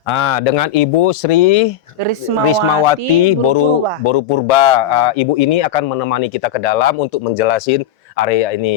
Dengan Ibu Sri Rismawati Boru Purba. Ibu ini akan menemani kita ke dalam untuk menjelasin area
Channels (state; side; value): quieter; right; 9.5 dB